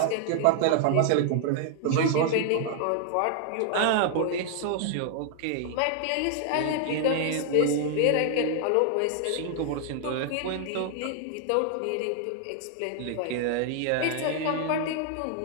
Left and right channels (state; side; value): different; both; correlation 0.00